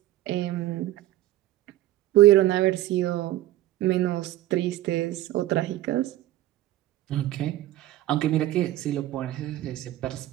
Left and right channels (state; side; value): quieter; left; 14.9 dB